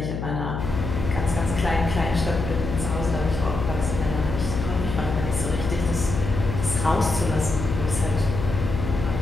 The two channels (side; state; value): left; noise; hum, 4 dB below the sound